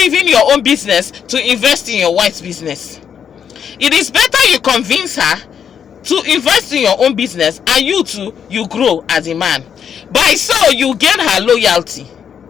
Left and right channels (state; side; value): quieter; right; 7.9 dB